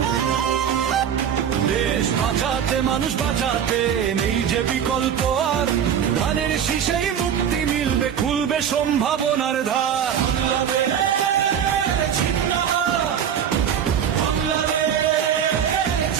দেশ বাঁচাতে মানুষ বাঁচাতে নেই যে বিকল্প আর, ধানের শীষেই মুক্তি মিলবে, খুলবে সম্ভাবনার দ্বার।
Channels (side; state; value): left; quieter; 8.6 dB